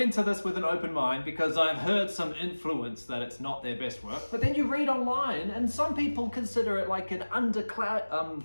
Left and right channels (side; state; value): both; inverted; correlation -1.00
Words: into this with an open mind because I've heard some influence that it's not their best work. But then you read online, and some people consider it like an underground